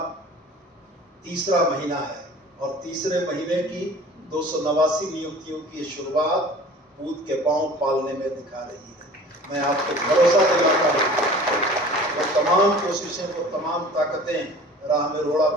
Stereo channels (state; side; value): normal; both; correlation 0.44